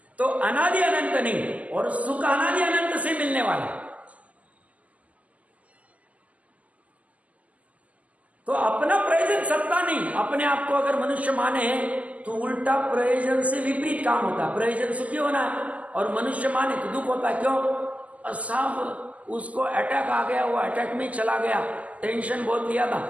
तो अनादि अनंत नहीं, और सुख अनादि अनंत से मिलने वाला। तो अपना प्रयोजन सत्ता नहीं, अपने आप को अगर मनुष्य माने तो उल्टा प्रयोजन से विपरीत काम होता है। प्रयोजन सुखी होना है और मनुष्य माने तो दुख होता है। क्यों साहब? उसको अटैक आ गया, वो अटैक में चला गया, टेंशन बहुत लिया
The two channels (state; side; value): late; left; 0.072 ms